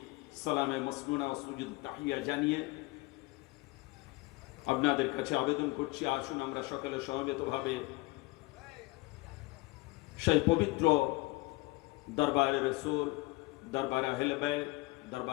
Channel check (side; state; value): right; quieter; 22.7 dB